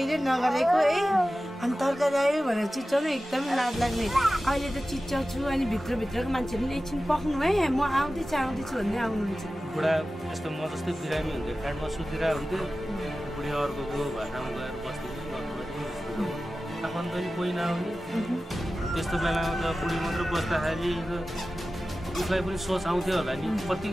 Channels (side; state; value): both; normal; correlation 0.95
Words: नगरेको है अनि तरकारी आयो भनेर चिच्याउनु एकदमै लाज लाग्ने अहिले त चिच्याउँछु अनि भित्रभित्रको मान्छेहरूले एकछिन पक्नु है म आउँदैछु भन्दै आउनुहुन्छ बुढा यस्तो म जस्तै बिरामी हुन्थ्यो फ्याटमा सुतिरा हुन्थ्यो बुढी अर्कोको भाटामा गएर बस्दै आफन्त पनि कोही नआउने त्यस्तो बेलामा त बुढी मात्र बस्दाखेरि उसलाई पनि सोच आउँथ्यो होला नि